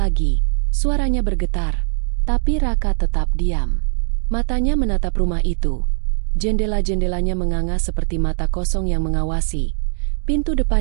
suaranya bergetar. Tapi Raka tetap diam. Matanya menatap rumah itu. Jendela-jendelanya menganga seperti mata kosong yang mengawasi. Pintu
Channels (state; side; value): silent; left; digital silence